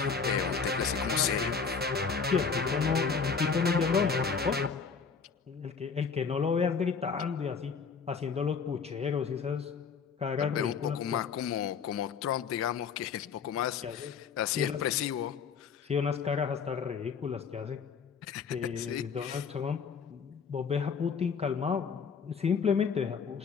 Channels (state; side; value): quieter; right; 5.8 dB